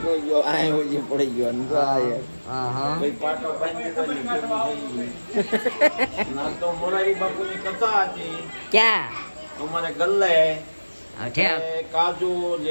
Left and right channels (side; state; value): both; inverted; correlation -1.00